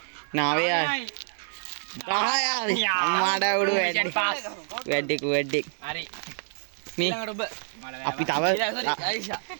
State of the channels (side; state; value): left; silent; digital silence